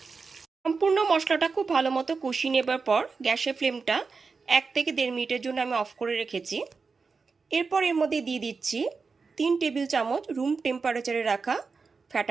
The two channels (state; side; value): quieter; left; 4.7 dB